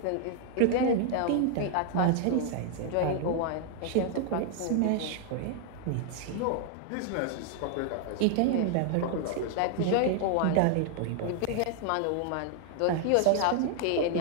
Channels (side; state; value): both; different; correlation 0.00